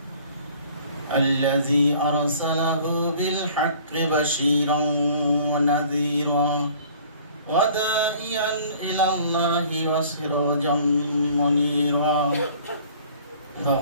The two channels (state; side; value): inverted; both; correlation -0.52